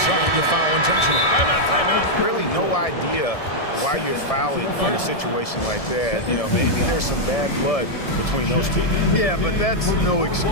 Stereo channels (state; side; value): late; right; 1.7 ms